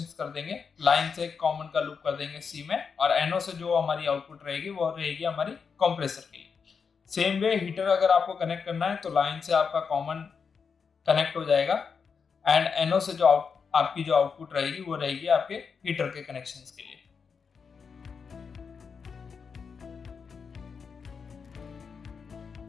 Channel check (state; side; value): quieter; right; 5.8 dB